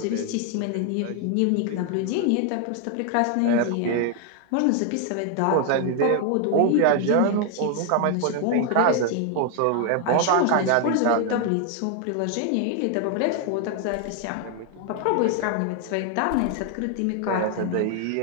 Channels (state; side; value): different; both; correlation 0.00